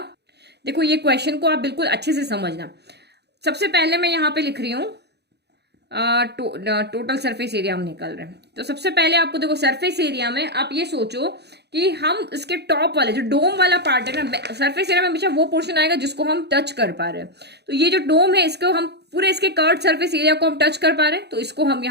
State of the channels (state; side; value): late; left; 0.48 ms